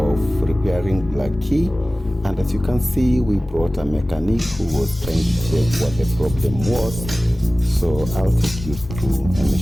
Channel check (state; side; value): normal; both; correlation 0.97